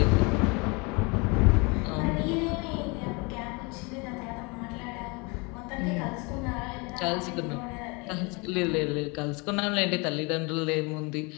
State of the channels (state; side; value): quieter; right; 29.2 dB